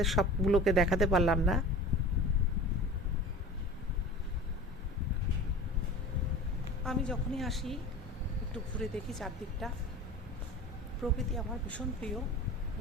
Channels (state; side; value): normal; both; correlation 0.39